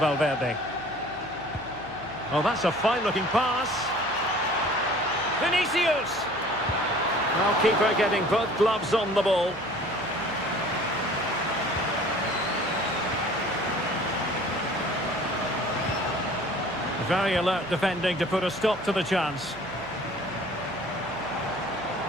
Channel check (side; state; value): right; noise; hum, 21 dB below the sound